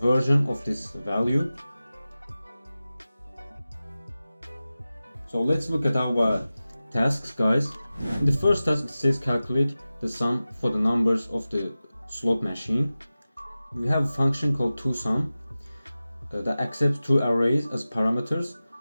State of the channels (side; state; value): both; inverted; correlation -0.95